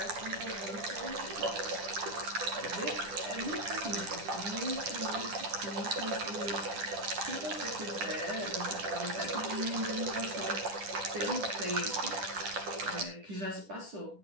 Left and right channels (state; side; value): late; left; 10 ms